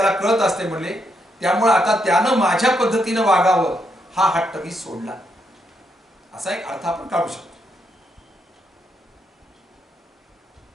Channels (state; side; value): normal; both; correlation 0.78